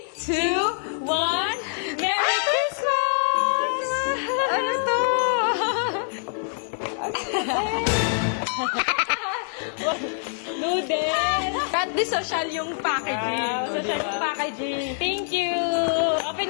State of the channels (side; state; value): right; silent; 56 dB below the other